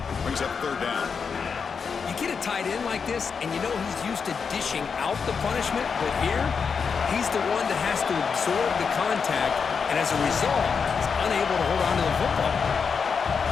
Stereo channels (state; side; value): quieter; right; 5.9 dB